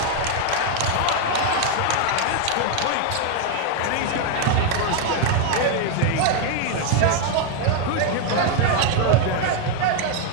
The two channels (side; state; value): both; different; correlation 0.00